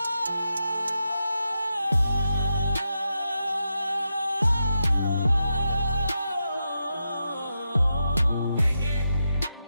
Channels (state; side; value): inverted; both; correlation -0.87